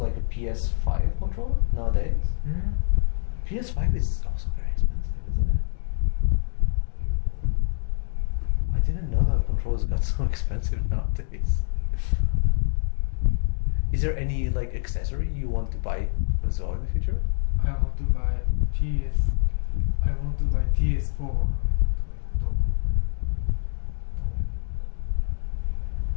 a PS5 controller nowadays? PS5 is also very expensive, isn't it? I didn't know that controllers got so expensive nowadays. Is there any like accessory you want to buy as well in the future? I want to buy PS4.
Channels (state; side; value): silent; right; digital silence